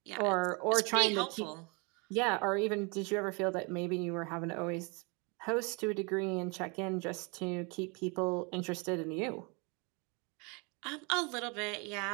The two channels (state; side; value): quieter; left; 31.4 dB